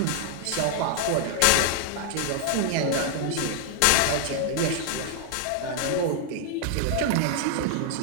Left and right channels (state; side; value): different; both; correlation 0.00